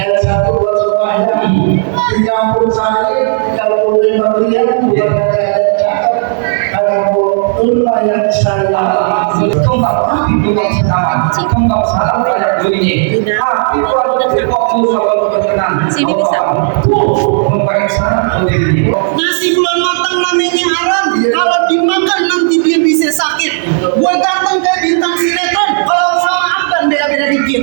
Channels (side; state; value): left; silent; 63 dB below the other